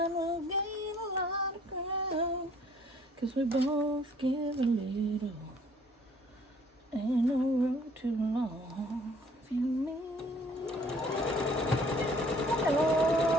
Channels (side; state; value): both; normal; correlation 0.58